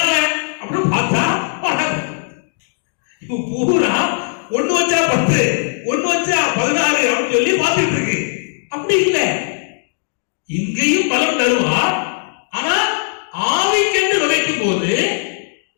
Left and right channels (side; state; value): right; silent; 67 dB below the other